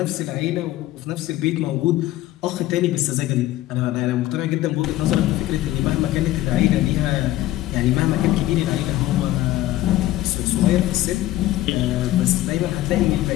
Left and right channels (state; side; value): quieter; right; 15.3 dB